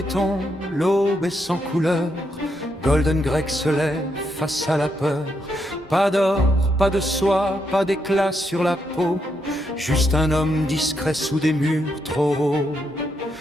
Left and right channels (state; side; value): normal; both; correlation 0.80